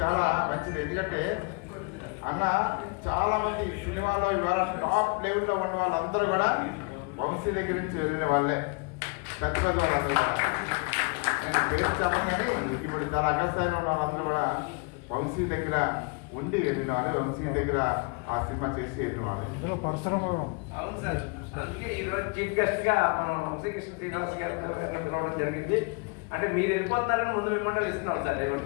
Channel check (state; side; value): quieter; right; 32.3 dB